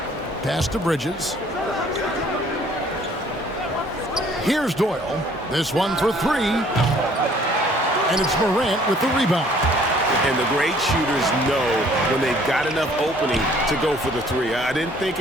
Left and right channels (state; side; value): normal; both; correlation 0.58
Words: Pass to Bridges. Here's Doyle. This one for 3. And it's Morant with the rebound. And the great shooters know when they've got enough opening to go for the 3. I didn't think